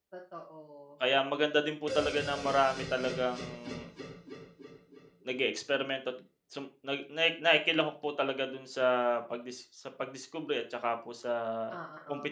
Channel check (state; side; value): identical; both; correlation 1.00